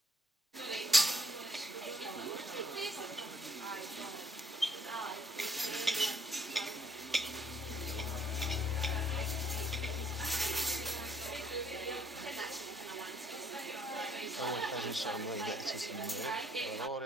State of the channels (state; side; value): normal; both; correlation 0.66